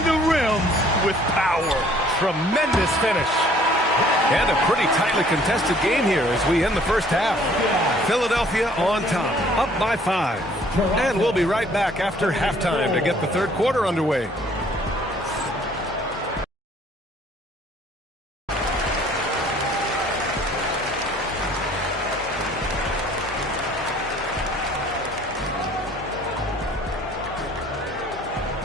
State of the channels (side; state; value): both; normal; correlation 0.57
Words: the rim with power. Tremendous finish. And a pretty tightly contested game here as we end the first half. Philadelphia on top, up by 5. And we'll be right back after halftime to get the third quarter underway.